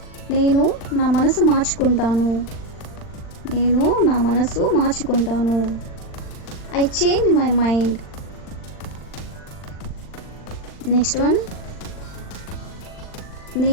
నేను నా మనసు మార్చుకుంటాను, నేను నా మనసు మార్చుకుంటాను. I change my mind. Next one,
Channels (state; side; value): late; right; 39 ms